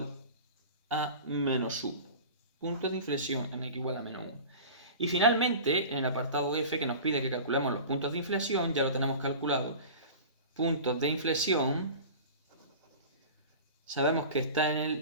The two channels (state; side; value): inverted; both; correlation -0.36